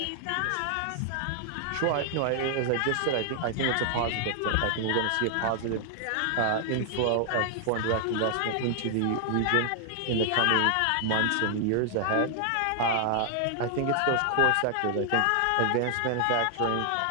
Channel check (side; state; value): both; different; correlation 0.00